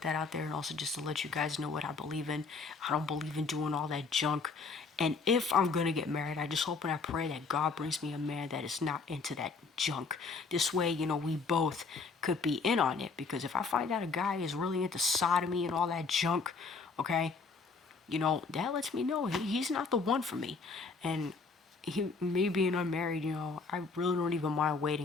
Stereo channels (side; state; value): right; quieter; 4.5 dB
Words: that out there and also just to let you guys know what I believe in. I don't believe in doing all that junk. And if I'm going to get married, I just hope and I pray that God brings me a man that is not into that junk. This way, we both could be in on it. Because if I find out a guy is really into sodomy and all that junk, okay, that lets me know he's not the one for me. And me being unmarried, I really don't even mind